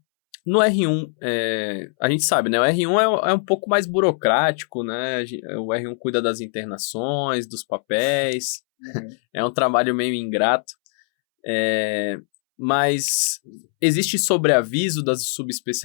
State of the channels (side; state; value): right; silent; 65 dB below the other